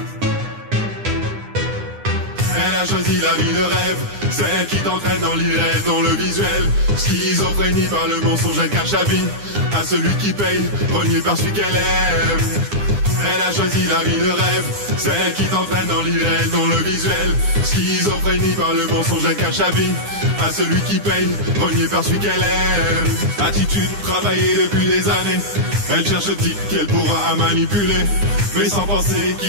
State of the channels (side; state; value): left; late; 9.8 ms